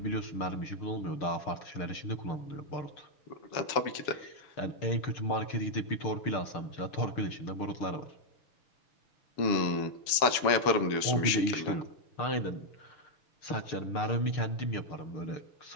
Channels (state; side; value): late; right; 7.1 ms